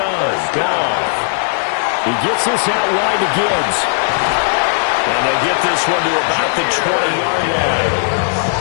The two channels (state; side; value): silent; right; 62 dB below the other